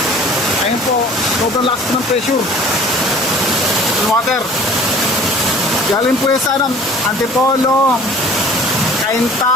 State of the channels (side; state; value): both; normal; correlation 0.48